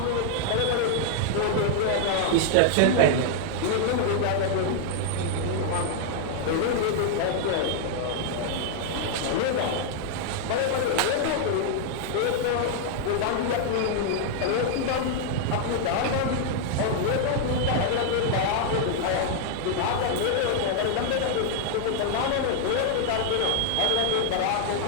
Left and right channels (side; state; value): both; different; correlation 0.00